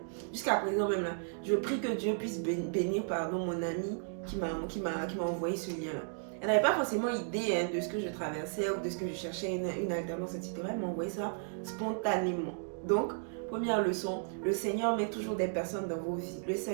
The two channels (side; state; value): left; silent; digital silence